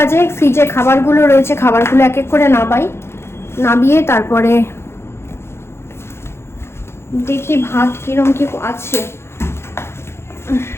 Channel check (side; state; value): right; late; 0.12 ms